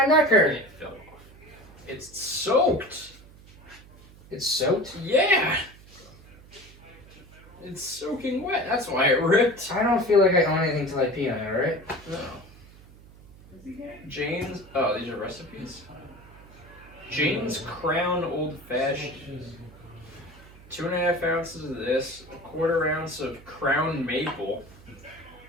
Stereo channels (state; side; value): noise; right; hum, 22 dB below the sound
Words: necker. It fell off. It's soaked. It's soaked. Yeah. It's soaking wet. That's why it ripped. I don't feel like I own anything till I pee on it. All right. No. Jane's. Oh, these are recipes. Jane's Crown Old Fashioned. 2.5 ounces of this. 1/4 ounce of Crown Maple.